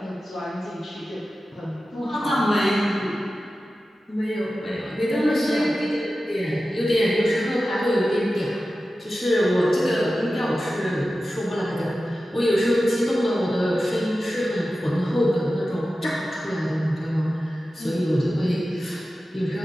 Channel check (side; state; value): both; normal; correlation 0.94